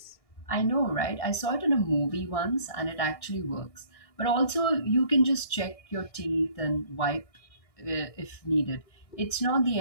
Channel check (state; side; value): late; right; 1.6 ms